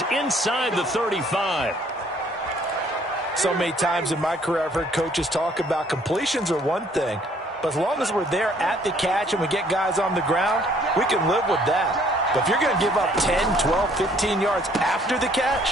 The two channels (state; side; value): normal; both; correlation 0.61